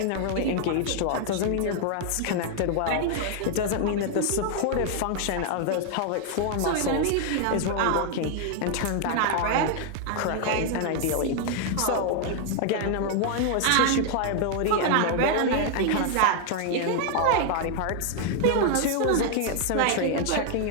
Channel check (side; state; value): both; different; correlation 0.00